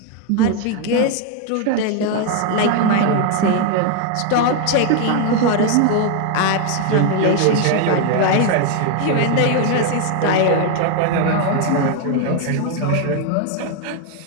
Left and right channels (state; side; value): different; both; correlation 0.01